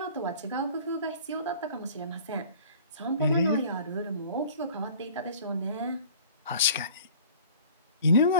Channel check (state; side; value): inverted; both; correlation -0.46